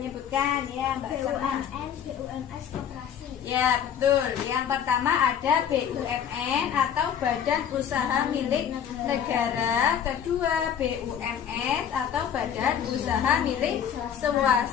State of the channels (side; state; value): right; quieter; 8.7 dB